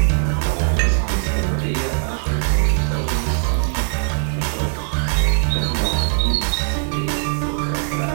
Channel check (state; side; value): silent; left; digital silence